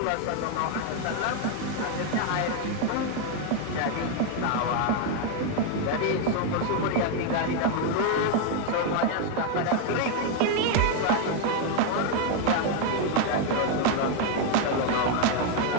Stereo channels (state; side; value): different; both; correlation 0.01